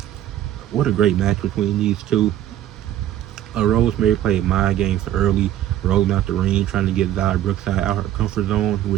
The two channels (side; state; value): left; quieter; 12.1 dB